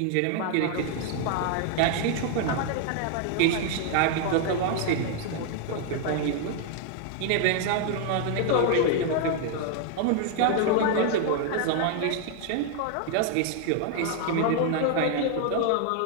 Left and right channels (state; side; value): different; both; correlation 0.00